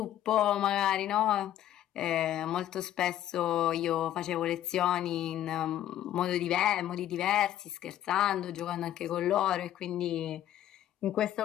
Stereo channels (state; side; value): quieter; right; 11.9 dB